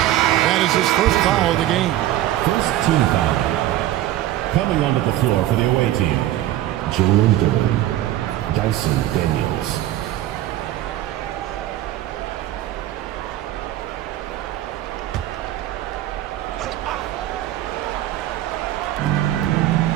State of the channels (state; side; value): quieter; left; 13.8 dB